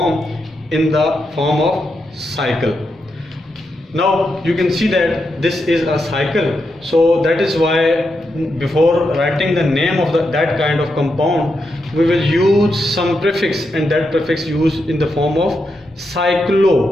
in the form of cycle. Now you can see that this is a cycle, so that is why before writing the name of that kind of compound, we will use some prefix, and that prefix used in the form of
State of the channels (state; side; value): normal; both; correlation 0.84